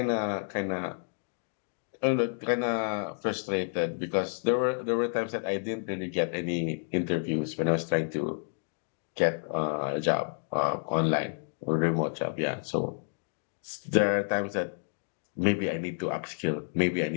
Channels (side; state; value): right; silent; digital silence